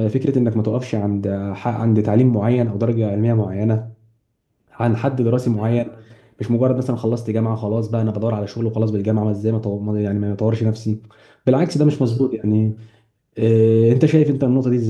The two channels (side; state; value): both; identical; correlation 1.00